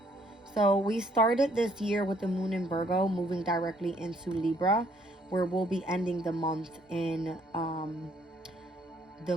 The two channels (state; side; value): normal; both; correlation 0.65